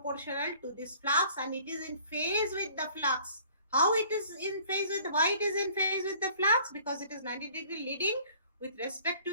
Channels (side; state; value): both; inverted; correlation -0.54